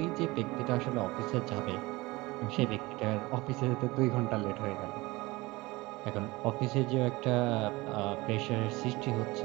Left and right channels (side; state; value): left; quieter; 21.6 dB